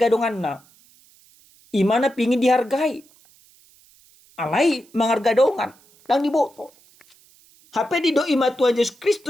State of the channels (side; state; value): right; noise; hiss, 29 dB below the sound